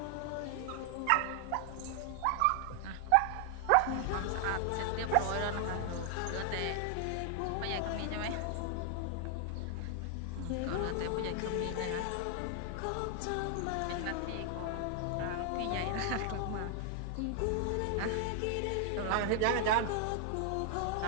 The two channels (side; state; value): both; different; correlation 0.00